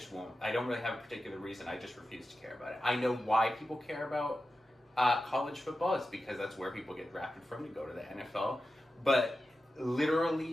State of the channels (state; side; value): normal; both; correlation 0.93